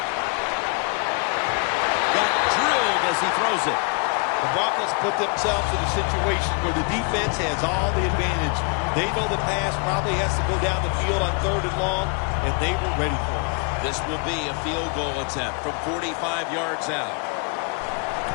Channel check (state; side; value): quieter; right; 36.7 dB